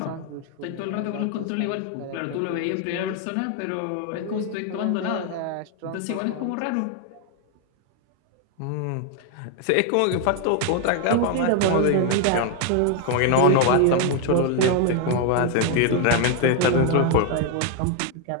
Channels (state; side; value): different; both; correlation 0.00